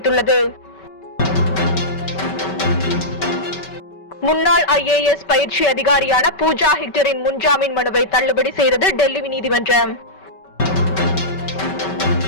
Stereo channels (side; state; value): right; late; 5.2 ms